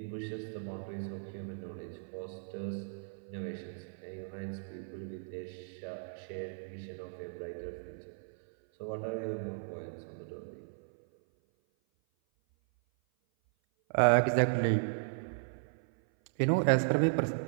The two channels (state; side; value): silent; left; 54 dB below the other